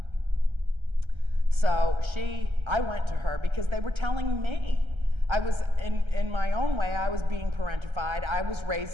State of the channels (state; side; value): late; left; 1.3 ms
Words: So I went to her because they were telling me. I was, in my own way, I was being parentified. I was